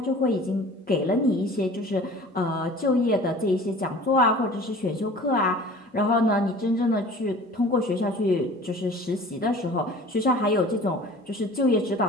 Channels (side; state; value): both; normal; correlation 0.44